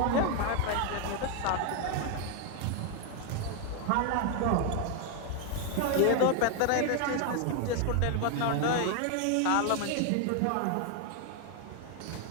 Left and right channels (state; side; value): different; both; correlation 0.01